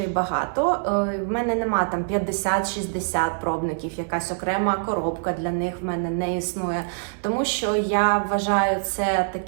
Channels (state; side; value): silent; left; 62 dB below the other